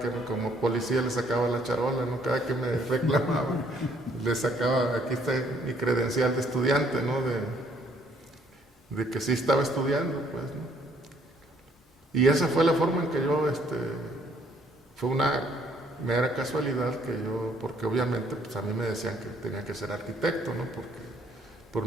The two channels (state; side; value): normal; both; correlation 0.65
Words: como policía le sacaba la charola, ¿no? Cada que me reclamaba, le sacaba, aquí está mi credencial de estudiante, ¿no? De que sí estaba estudiando, pues, ¿no? Y esa fue la forma en que yo, fue una mera casualidad porque obviamente, pues a mí me decían que tenía que ser arquitecto, ¿no? Por